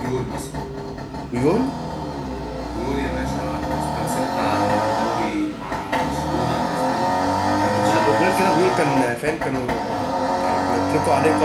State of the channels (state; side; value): identical; both; correlation 1.00